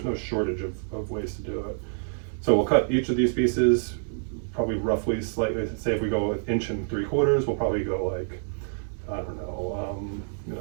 no shortage of ways to do it. So we'll cut each of these pieces probably roughly slightly. Say if we go 1.75 inches, we'll probably go like, I don't know, you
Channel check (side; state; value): left; silent; 60 dB below the other